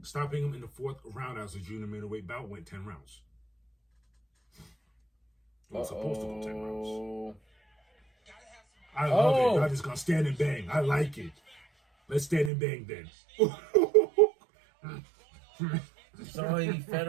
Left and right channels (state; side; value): drops out; left; at 12.5 s